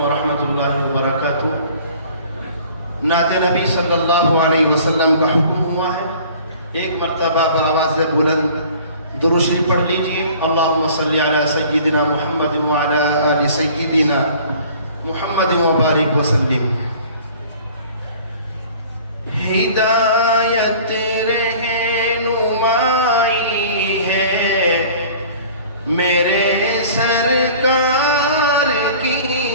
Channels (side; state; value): both; inverted; correlation -0.48